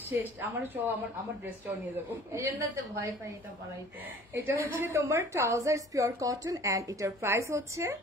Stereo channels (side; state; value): both; normal; correlation 0.49